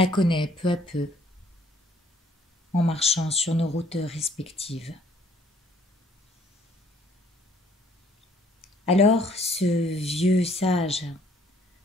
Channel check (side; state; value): both; normal; correlation 0.61